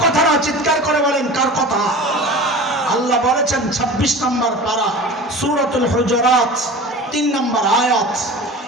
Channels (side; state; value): both; normal; correlation 0.36